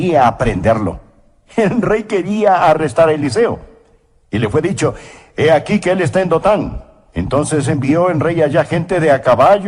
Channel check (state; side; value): identical; both; correlation 1.00